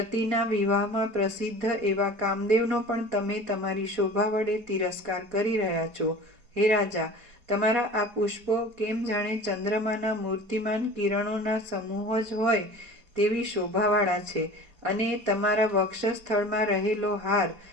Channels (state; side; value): late; left; 4.7 ms